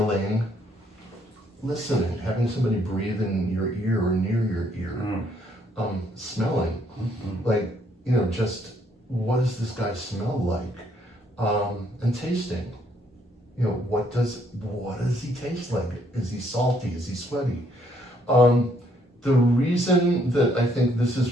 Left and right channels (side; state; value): both; normal; correlation 0.69